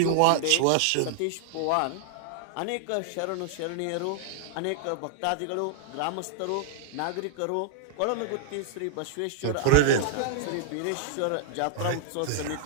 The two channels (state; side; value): different; both; correlation -0.01